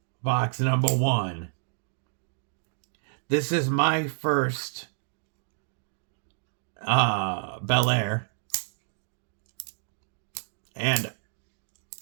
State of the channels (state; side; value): silent; left; 58 dB below the other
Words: box number 1. This is my first Bel Air. And